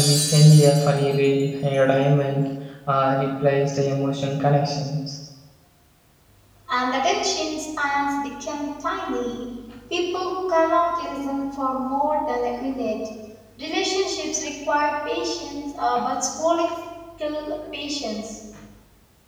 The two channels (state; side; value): identical; both; correlation 1.00